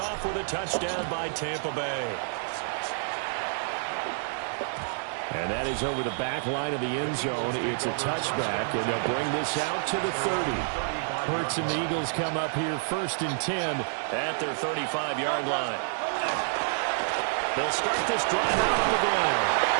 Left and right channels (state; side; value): silent; left; digital silence